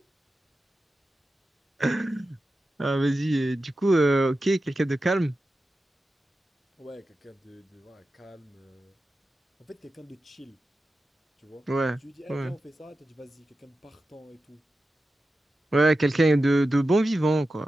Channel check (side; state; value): both; normal; correlation 0.92